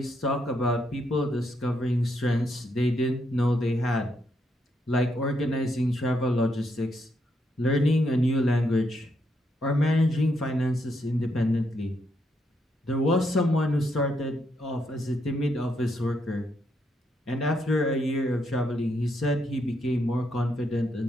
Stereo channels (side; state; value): both; normal; correlation 0.78